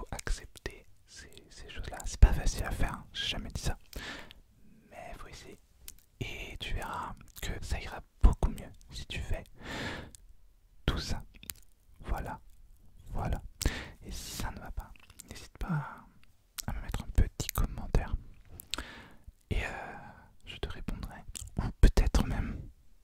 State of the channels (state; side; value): identical; both; correlation 1.00